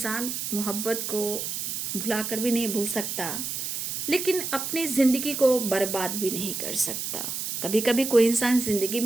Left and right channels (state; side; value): noise; right; hiss, 3 dB below the sound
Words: मोहब्बत को भुला कर भी नहीं भूल सकता, लेकिन अपनी ज़िंदगी को बर्बाद भी नहीं कर सकता। कभी कभी कोई इंसान ज़िंदगी